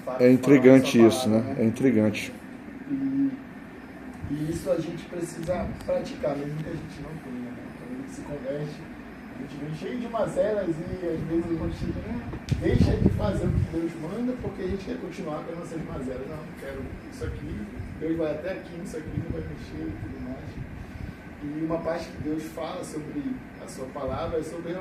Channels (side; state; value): both; identical; correlation 1.00